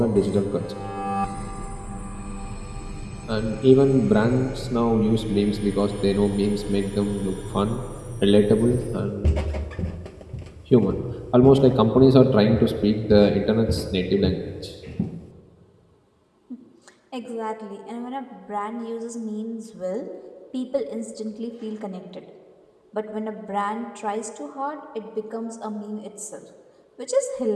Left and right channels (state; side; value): identical; both; correlation 1.00